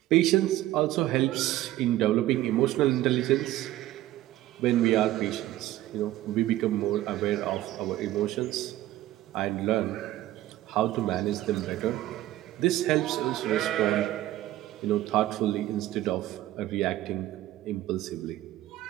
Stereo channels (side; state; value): left; quieter; 14.8 dB